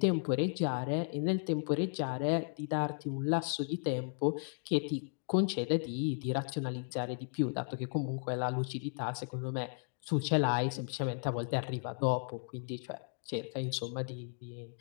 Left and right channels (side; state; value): right; silent; 54 dB below the other